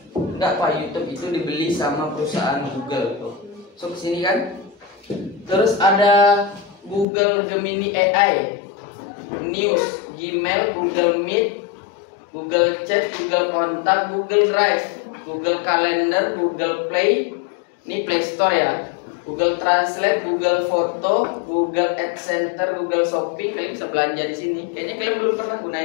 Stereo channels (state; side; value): drops out; right; at 7.1 s